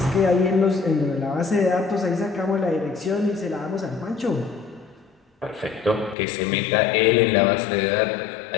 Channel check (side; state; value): right; drops out; at 6.2 s